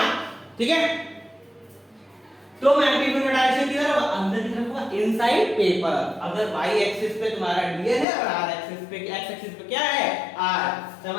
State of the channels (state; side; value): drops out; right; at 8.1 s